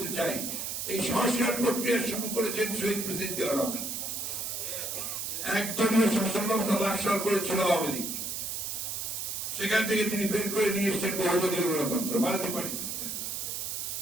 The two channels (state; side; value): noise; right; hiss, 3 dB below the sound